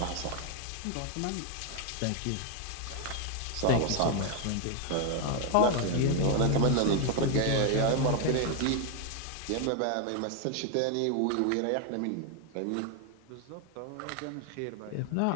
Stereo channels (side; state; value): both; different; correlation 0.01